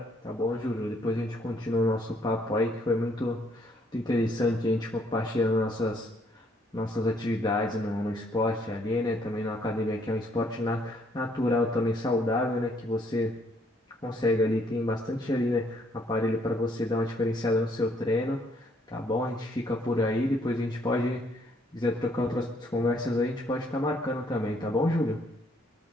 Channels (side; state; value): both; normal; correlation 0.68